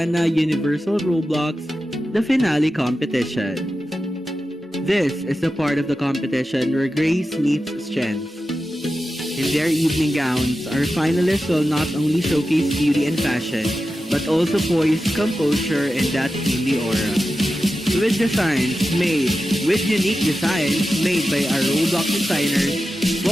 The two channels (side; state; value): both; normal; correlation 0.92